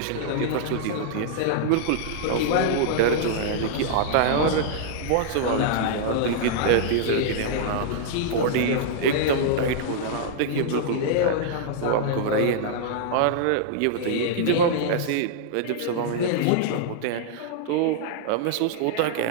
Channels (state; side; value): different; both; correlation -0.01